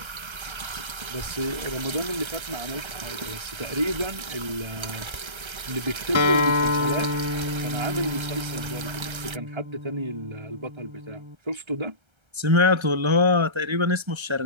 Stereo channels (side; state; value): left; late; 1.3 ms